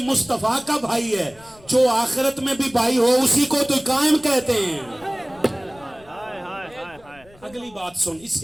مصطفیٰ کا بھائی ہے. جو آخرت میں بھی بھائی ہو اسی کو تو قائم کہتے ہیں. ہائے ہائے ہائے ہائے. اگلی بات سن، اس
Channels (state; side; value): noise; left; rumble, 26 dB below the sound